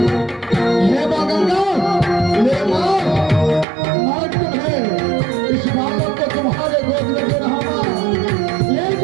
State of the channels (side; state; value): left; drops out; at 3.7 s